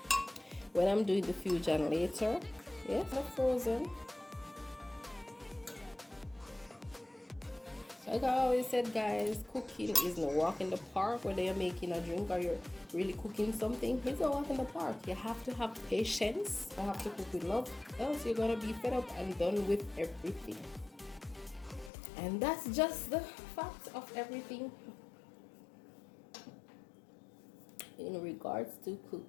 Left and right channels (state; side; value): drops out; right; at 21.9 s